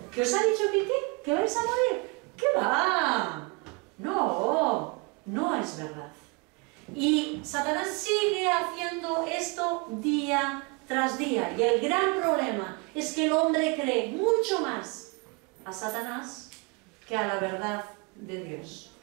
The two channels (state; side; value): quieter; left; 29.5 dB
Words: ¿Que os ha dicho que vais a morir? ¿Qué va? No, no es verdad. Y Satanás sigue haciendo esto día tras día. Y el gran problema es que el hombre cree mucho más a Satanás que a la verdad de Dios.